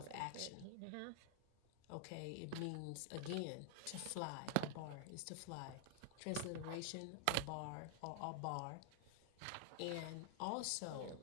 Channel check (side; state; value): both; different; correlation 0.00